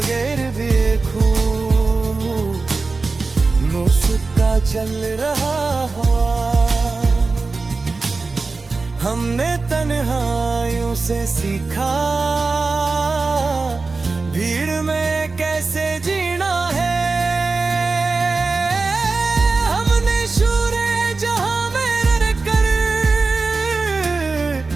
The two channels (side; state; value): left; quieter; 3.9 dB